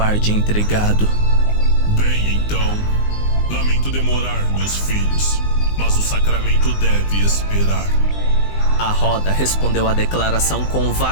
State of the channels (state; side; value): late; right; 19 ms